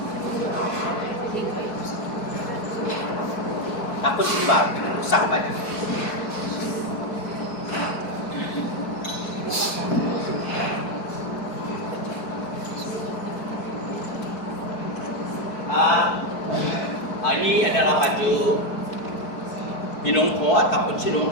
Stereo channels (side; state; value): right; late; 4.6 ms